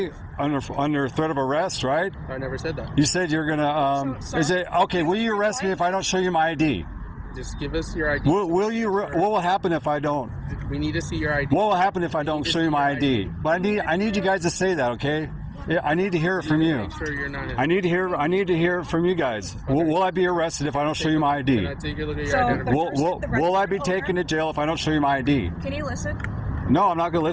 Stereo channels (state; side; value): identical; both; correlation 1.00